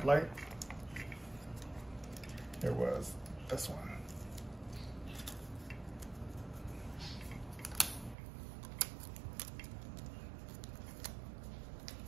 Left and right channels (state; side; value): drops out; left; at 8.2 s